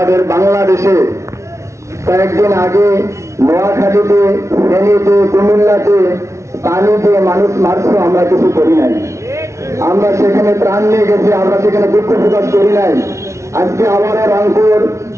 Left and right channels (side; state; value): left; late; 0.14 ms